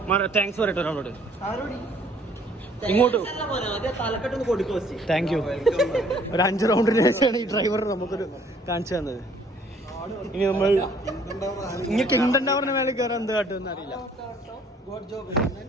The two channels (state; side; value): normal; both; correlation 0.59